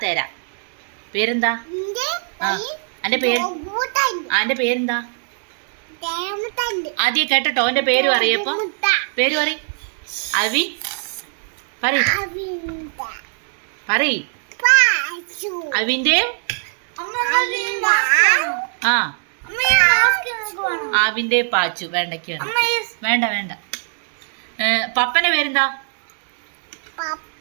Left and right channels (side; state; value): left; silent; 65 dB below the other